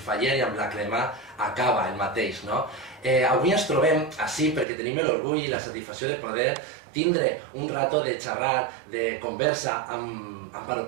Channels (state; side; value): drops out; left; at 4.7 s